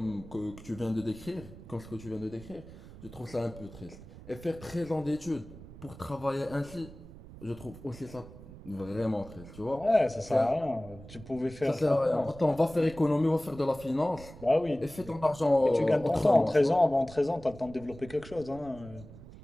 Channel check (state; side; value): noise; right; rumble, 17 dB below the sound